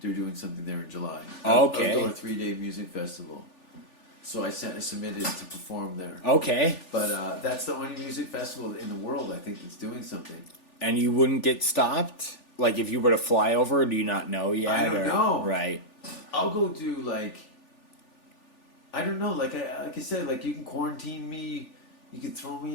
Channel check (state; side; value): late; right; 3.4 ms